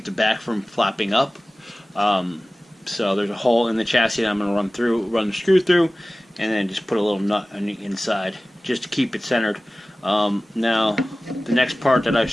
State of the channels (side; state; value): both; normal; correlation 0.97